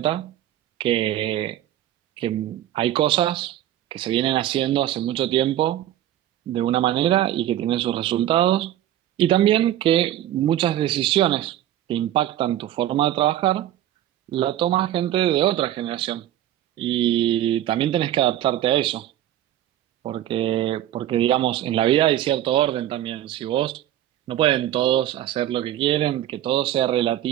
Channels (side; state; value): left; quieter; 12.6 dB